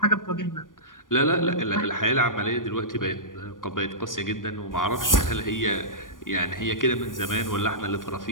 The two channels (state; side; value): late; right; 0.89 ms